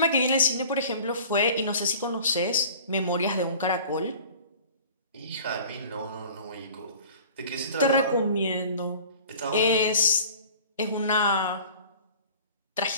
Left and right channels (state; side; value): inverted; both; correlation -0.44